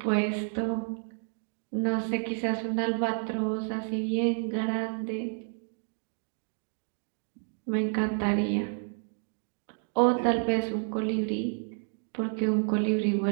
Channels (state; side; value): silent; left; 57 dB below the other